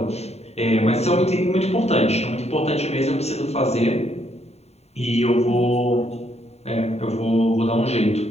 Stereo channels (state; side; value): late; right; 0.31 ms